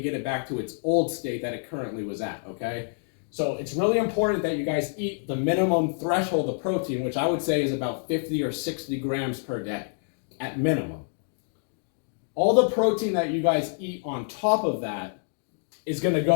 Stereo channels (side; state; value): right; silent; digital silence